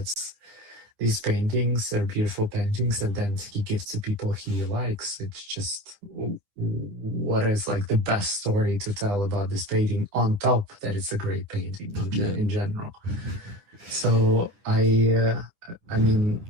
these paintings. They're beautiful paintings, and then he gives to people he likes. It's just, what is like the best story to tell about this painting, on top that it's a great painting in general. So I mean,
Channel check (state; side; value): late; left; 9.9 ms